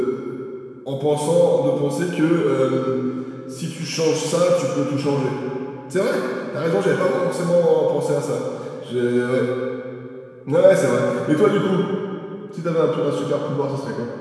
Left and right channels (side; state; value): both; identical; correlation 1.00